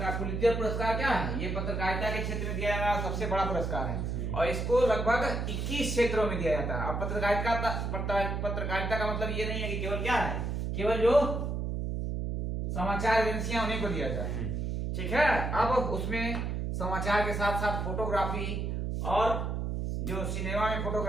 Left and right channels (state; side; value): noise; right; hum, 2 dB below the sound